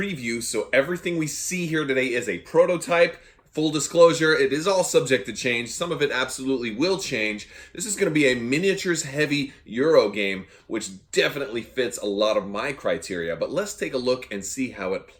so everything we see here today is a prototype. Full disclosure, it is all subject to change. Some of it absolutely will change. This is going to be a miniatures heavy Euro game, which definitely fits a lot of my criteria. But let's take a look and see how it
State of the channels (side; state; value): both; identical; correlation 1.00